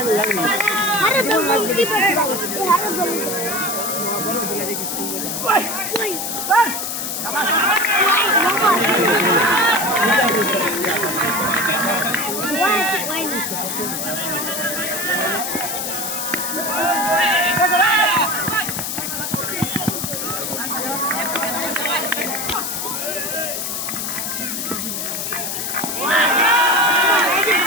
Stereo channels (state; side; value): noise; left; hiss, 3 dB below the sound